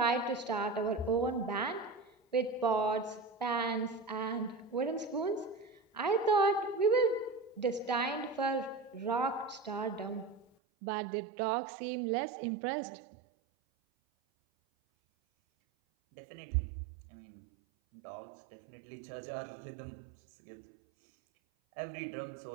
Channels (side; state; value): left; drops out; at 10.5 s